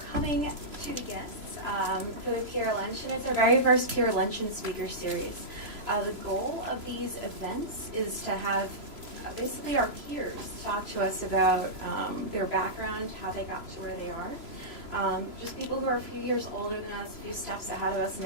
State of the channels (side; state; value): left; late; 3.0 ms